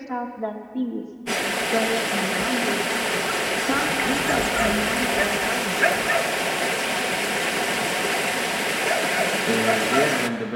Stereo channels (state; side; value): identical; both; correlation 1.00